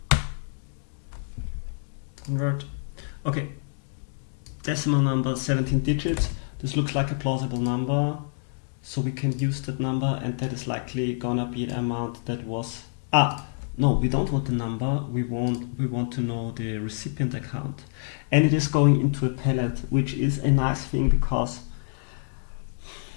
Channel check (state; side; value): silent; right; digital silence